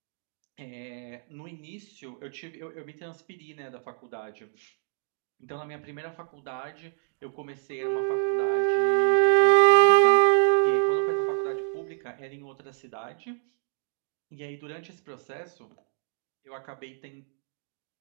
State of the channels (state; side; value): silent; left; digital silence